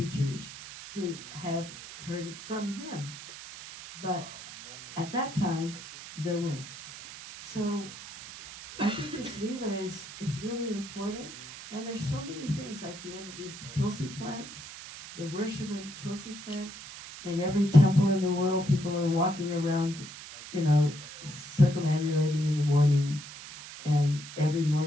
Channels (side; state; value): right; noise; hiss, 13 dB below the sound